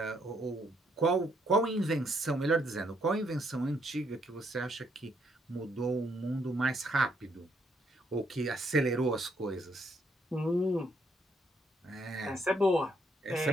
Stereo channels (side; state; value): both; normal; correlation 0.73